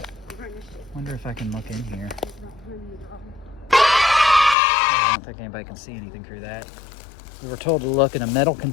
wonder if I can look in here. I don't think anybody can see anything through that. We were told to look in a metal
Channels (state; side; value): drops out; right; at 4.5 s